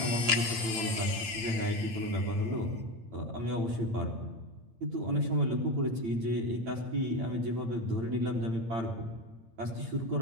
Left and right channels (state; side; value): late; left; 8.6 ms